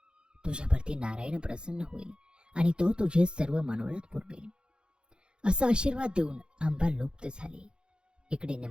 तुझ्यावरती नारायण प्रसन्न होईल आणि तो तुझे सर्व मनोरथ पुरवेल. असा आशीर्वाद देऊन आंबा लुप्त झाली. इकडे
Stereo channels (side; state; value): left; late; 0.050 ms